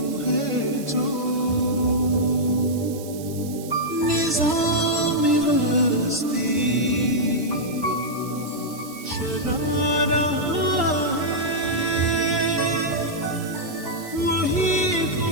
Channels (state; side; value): noise; right; hiss, 16 dB below the sound